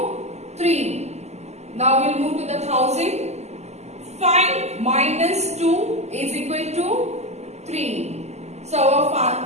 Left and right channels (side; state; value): left; late; 0.32 ms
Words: 3. Now we will move to the thousand. 5 minus 2 is equal to 3. So our